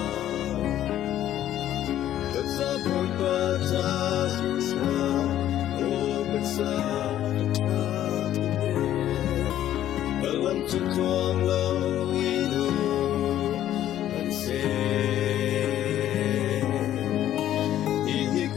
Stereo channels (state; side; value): quieter; right; 12.1 dB